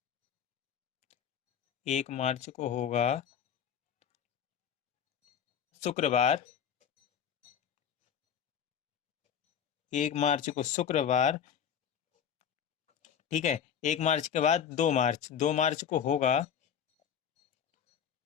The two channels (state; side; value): quieter; right; 8.4 dB